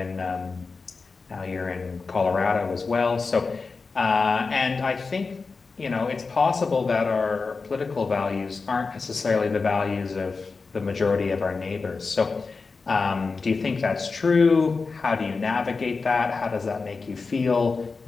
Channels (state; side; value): quieter; right; 4.4 dB